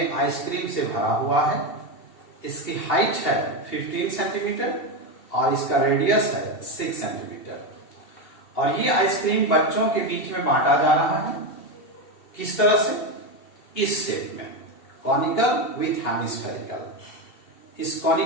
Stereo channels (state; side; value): late; right; 2.7 ms